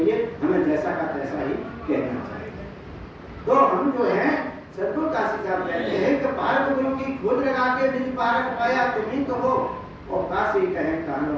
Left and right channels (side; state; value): both; identical; correlation 1.00